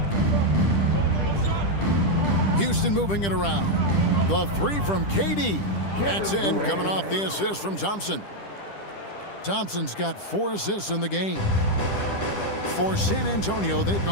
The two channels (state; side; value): late; right; 10 ms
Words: Houston moving it around. The 3 from KD. That's in, coming off the assist from Thompson. Thompson's got 4 assists in the game. For San Antonio, they've